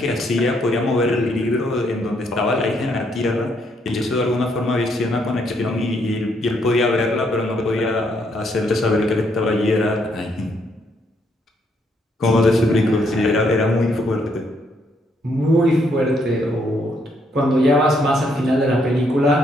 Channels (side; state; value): both; normal; correlation 0.73